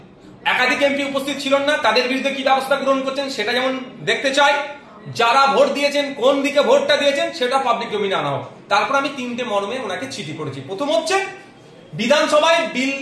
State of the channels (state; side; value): identical; both; correlation 1.00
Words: একাধিক এমপি উপস্থিত ছিল না, তাদের বিরুদ্ধে কি ব্যবস্থা গ্রহণ করছেন সেটা যেমন দেখতে চাই, যারা ভোট দিয়েছেন কোন দিকে ভোটটা দিয়েছেন সেটা পাবলিক ডোমিনে আনা হোক। তারপর আমি 3টে মর্মে ওনাকে চিঠি করেছি। প্রথম হচ্ছে বিধানসভায় বিল,